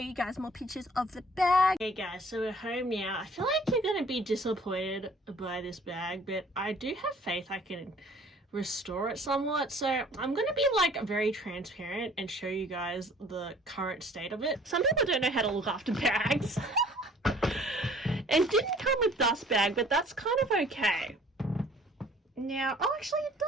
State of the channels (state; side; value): normal; both; correlation 0.53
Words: guys more pictures of the bag. Okay guys, so we're home now. I feel like you're going to be disappointed by this bag, but I do have faith I can restore it somewhat. So I'm going to be like very transparent and show you guys the current state of it. Some people don't know how to look after bags. And didn't come with dust bag, but that's kind of okay. Now, oh, actually it